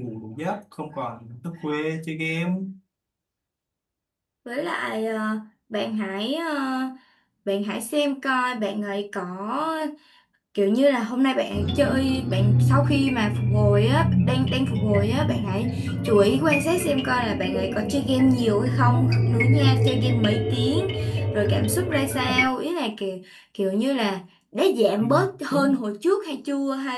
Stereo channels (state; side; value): identical; both; correlation 1.00